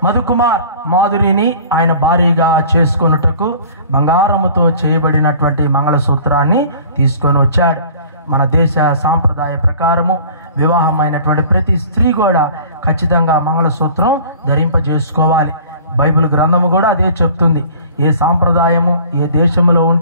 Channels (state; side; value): inverted; both; correlation -0.47